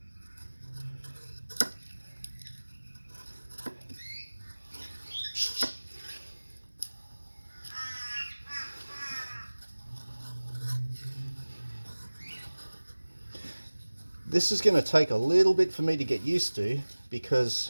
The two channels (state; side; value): inverted; both; correlation -1.00